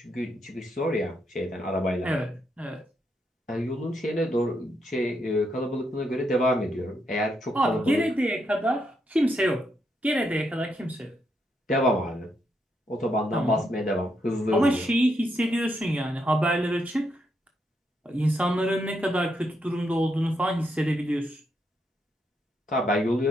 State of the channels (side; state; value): both; normal; correlation 0.79